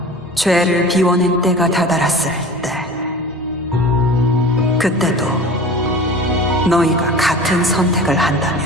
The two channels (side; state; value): both; normal; correlation 0.38